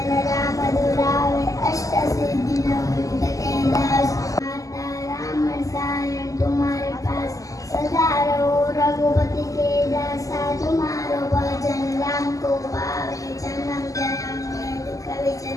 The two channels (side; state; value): right; late; 0.16 ms